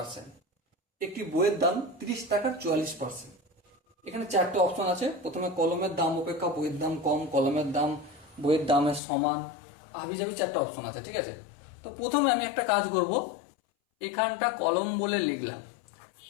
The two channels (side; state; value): right; drops out; at 9.0 s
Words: একটি বইয়ের দাম 30 টাকার 44%। এখানে চারটে অপশন আছে। প্রথমে কলমের দাম অপেক্ষা বইয়ের দাম কম, কলমের দাম বইয়ের দামের সমান, হাবিজাবি চারটে অপশন আছে, ঠিক আছে? তো প্রথমে আমি একটা কাজ করব, এখানটা কলম বলে লিখলাম